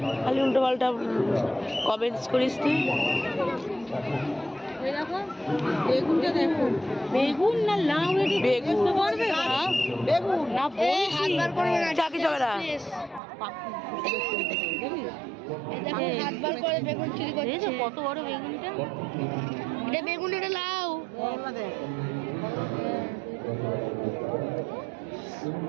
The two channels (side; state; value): left; drops out; at 13.2 s